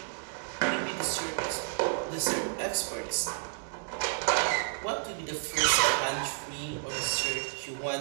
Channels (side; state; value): left; silent; digital silence